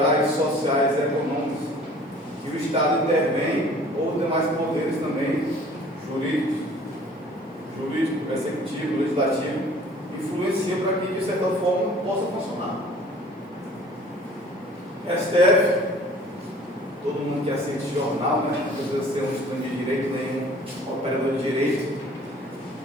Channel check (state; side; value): normal; both; correlation 0.50